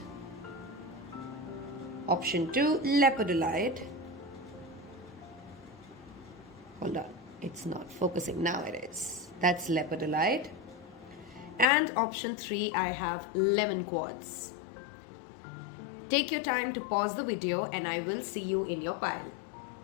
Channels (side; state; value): right; drops out; at 11.7 s